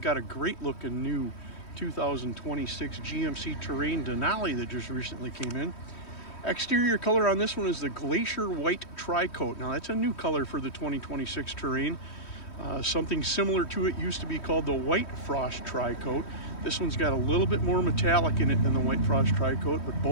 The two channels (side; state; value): right; late; 3.1 ms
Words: a great looking new 2026 GMC Terrain Denali that just recently came in. Exterior color on this one is the Glacier White TriCoat. Now, that's a new color for the 2026 Terrain. Something similar to it used to be called the White Frost TriCoat. This one's got a little bit more metallic in it than the White Frost TriCoat, but